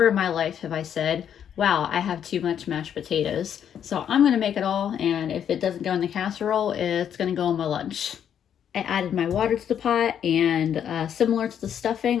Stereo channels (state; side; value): quieter; right; 9.0 dB